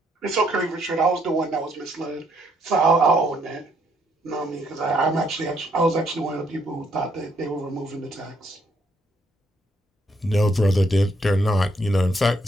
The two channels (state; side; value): normal; both; correlation 0.71